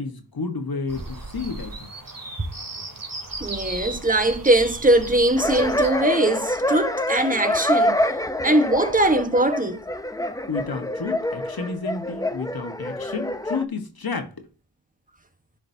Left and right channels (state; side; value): normal; both; correlation 0.43